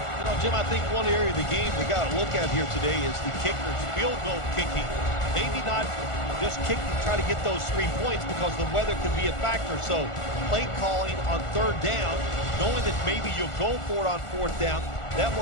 You know, Jim, I think one area of the game we got to look at here today is the kickers' field goal kicking. Maybe not just kick to try to get those 3 points because the weather could be a factor. So play calling on third down, knowing that maybe you'll go for it on fourth down, that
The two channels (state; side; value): late; right; 1.4 ms